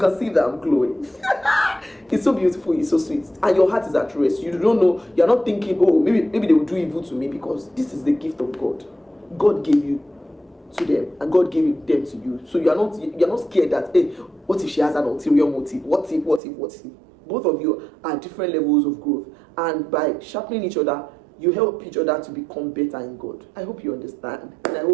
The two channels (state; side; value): drops out; left; at 16.4 s